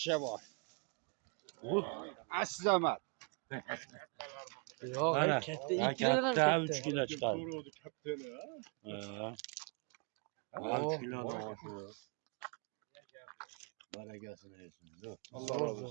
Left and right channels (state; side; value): quieter; left; 35.4 dB